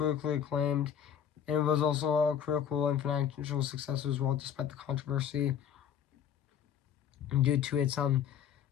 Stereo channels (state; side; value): quieter; right; 8.7 dB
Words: acclaimed, and it was also a critical and financial success as well, despite the controversy due to its